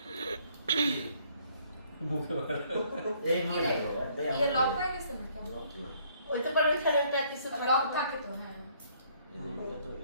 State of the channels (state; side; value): inverted; both; correlation -0.64